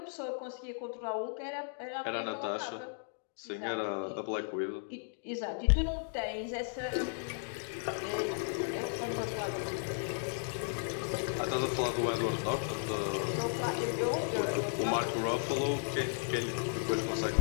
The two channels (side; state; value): right; silent; digital silence